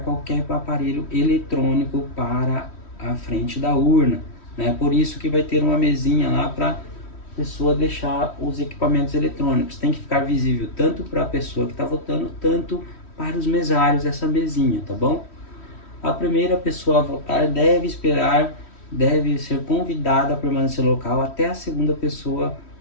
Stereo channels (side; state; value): right; late; 3.1 ms